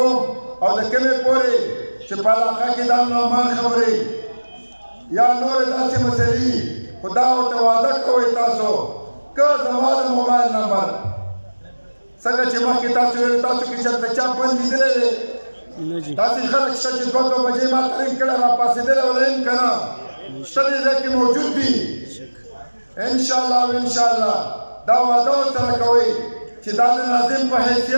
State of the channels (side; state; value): both; inverted; correlation -1.00